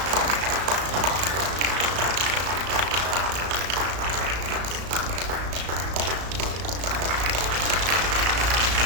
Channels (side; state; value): left; late; 34 ms